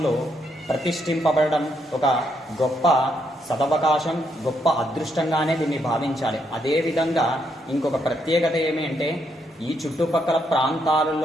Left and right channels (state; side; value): normal; both; correlation 0.76